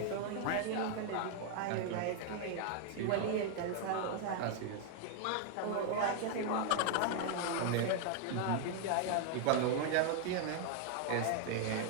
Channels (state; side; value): different; both; correlation 0.00